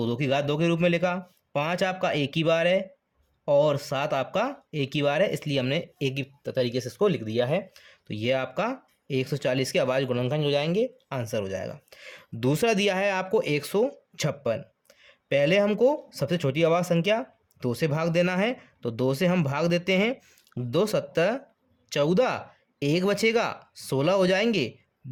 2 की घात 2 के रूप में लिखा। 5 आपका एक ही बार है और 7 आपका एक ही बार है, इसलिए हमने एक ही तरीके से इसको लिख दिया है। तो ये आपका 140 के अभाज्य गुणनखंड हो जाएंगे, आंसर हो जाएगा। दूसरा दिया है आपको 156। पहले हमको सबसे छोटी अभाज्य संख्या 2 से भाग देना है। तो 2 से हम भाग देते हैं, 2 सत्तर 14, 1 बचेगा, 16 हो जाएंगे,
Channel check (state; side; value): identical; both; correlation 1.00